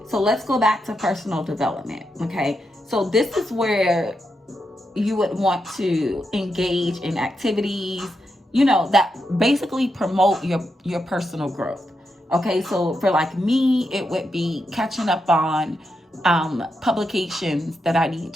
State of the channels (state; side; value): normal; both; correlation 0.85